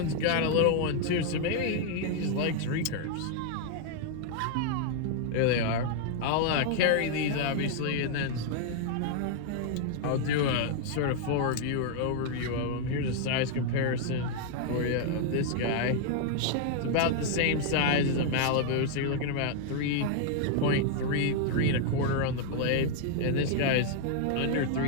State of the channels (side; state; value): both; different; correlation 0.00